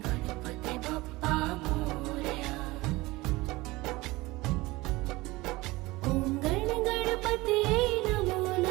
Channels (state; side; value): quieter; left; 20.9 dB